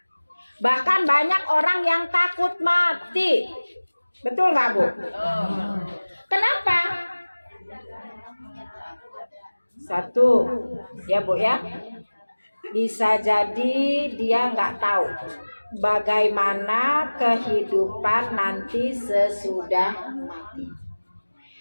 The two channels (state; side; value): inverted; both; correlation -1.00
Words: Bahkan banyak orang yang takut mati. Betul nggak Bu? Kenapa? Satu, ya Bu ya, bisa jadi dia nggak tahu bagaimana kehidupan nanti sesudah mati.